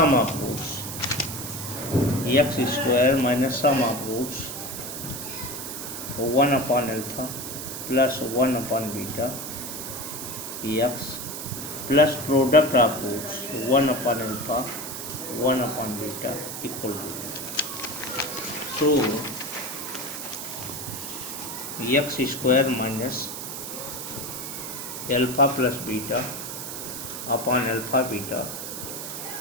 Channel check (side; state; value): right; noise; hiss, 7 dB below the sound